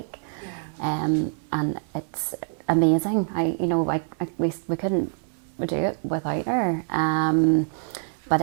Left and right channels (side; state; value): left; silent; 60 dB below the other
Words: Yeah. And it's amazing. We couldn't do it without her. But